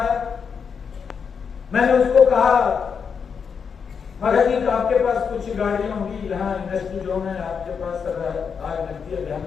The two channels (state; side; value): quieter; right; 6.3 dB